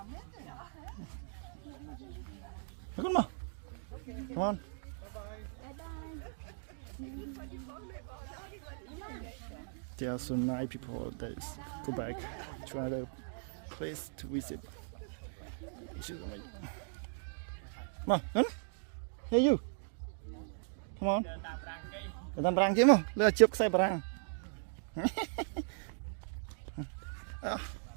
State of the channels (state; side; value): silent; left; digital silence